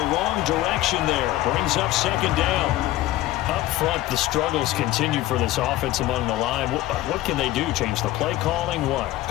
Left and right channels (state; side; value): quieter; right; 15.7 dB